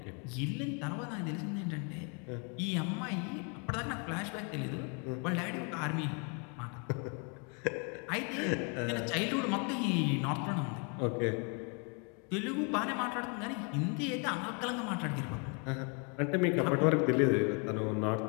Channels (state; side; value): quieter; right; 36.1 dB